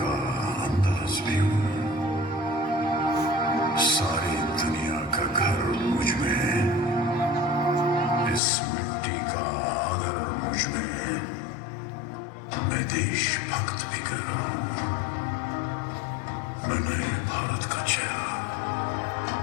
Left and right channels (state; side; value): drops out; right; at 8.4 s